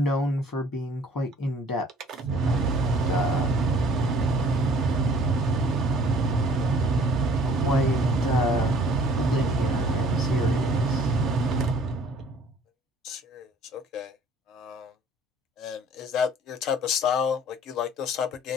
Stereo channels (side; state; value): both; normal; correlation 0.53